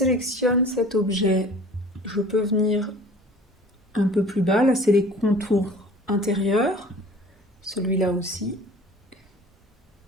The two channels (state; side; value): normal; both; correlation 0.46